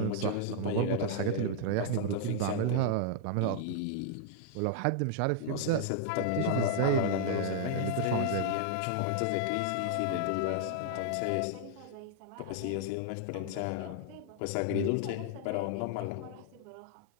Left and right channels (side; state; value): both; different; correlation -0.01